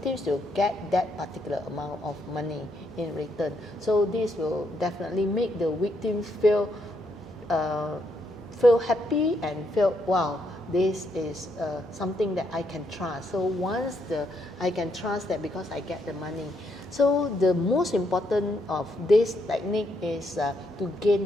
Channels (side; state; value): both; normal; correlation 0.76